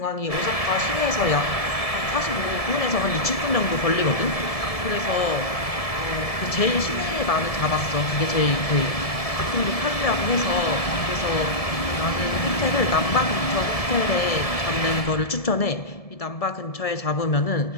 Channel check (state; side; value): late; right; 1.7 ms